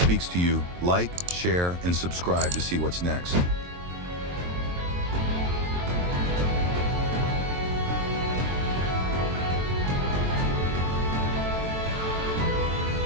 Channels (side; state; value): left; late; 23 ms